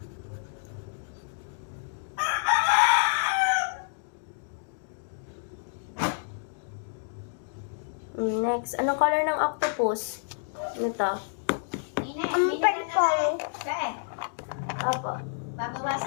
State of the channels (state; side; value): silent; right; digital silence